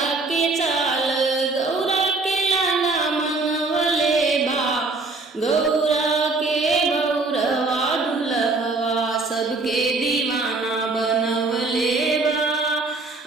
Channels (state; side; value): quieter; left; 3.6 dB